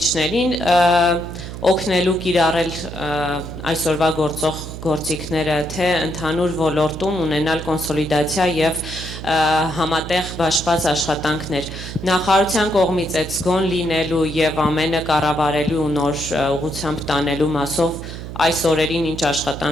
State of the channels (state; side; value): noise; right; hum, 10 dB below the sound